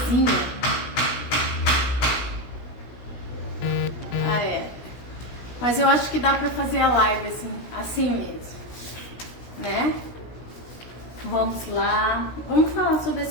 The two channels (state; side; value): late; right; 16 ms